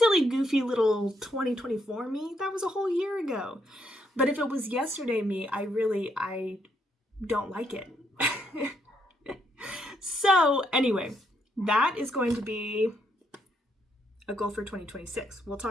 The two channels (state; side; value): normal; both; correlation 0.75